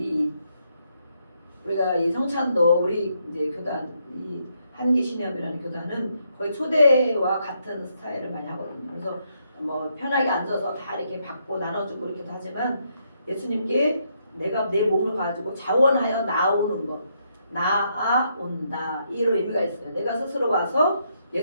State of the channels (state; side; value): inverted; both; correlation -0.76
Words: 우리가 이 성찬도 우리 이제 교단 이 한기신협이라는 교단은 거의 초대와 같은 스타일을 많이 하거든요. 그래서 뭐 편하게 앉아서 다 이렇게 받고 나눠주고 이렇게 하지만 예수님께 내가 내 몸을 가지고 자원하여 나오는 것, 나아온다 이런 의미가 있어요. 내가 스스로 와서